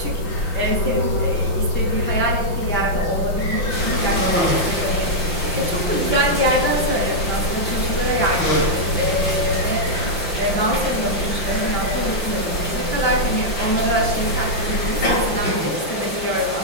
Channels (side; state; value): right; late; 5.8 ms